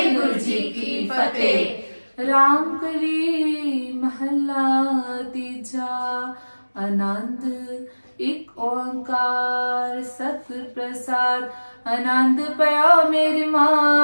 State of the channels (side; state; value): both; inverted; correlation -1.00